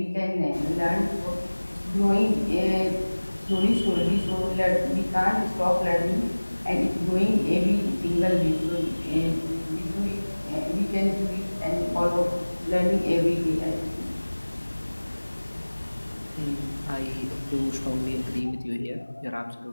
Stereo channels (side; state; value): both; inverted; correlation -1.00